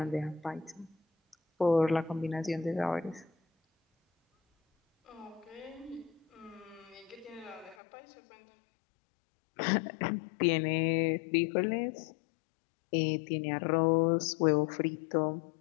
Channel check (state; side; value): drops out; right; at 7.8 s